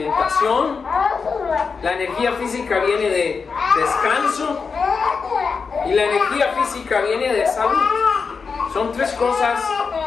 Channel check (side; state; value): right; quieter; 5.2 dB